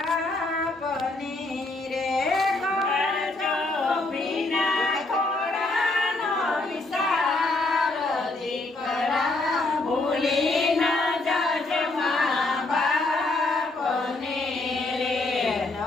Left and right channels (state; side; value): quieter; right; 3.0 dB